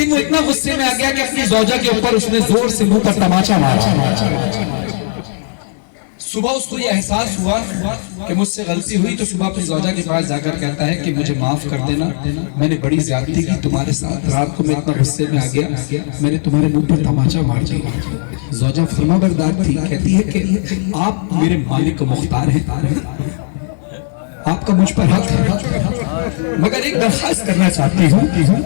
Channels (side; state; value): right; silent; digital silence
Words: वो इतना गुस्से में आ गया कि अपनी ज़ौजा के ऊपर उसने जोर से मुंह पर तमाचा मारा। सुबह उसको ये एहसास हुआ कि मुझसे गलती हुई, तो सुबह अपनी ज़ौजा के पास जाकर कहता है कि मुझे माफ कर देना, मैंने बड़ी ज्यादती की तुम्हारे साथ, रात को मैं इतना गुस्से में आ गया, मैंने तुम्हारे मुंह पर तमाचा मार दिया। ज़ौजा फरमाबरदार थी, कहती है कि आप मेरे मालिक को मुख्तार हैं, आपका मुझ पर हक है, मगर एक दरखास्त करना चाहती हूँ।